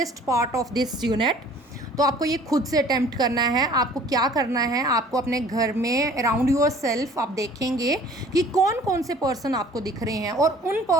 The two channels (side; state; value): both; normal; correlation 0.51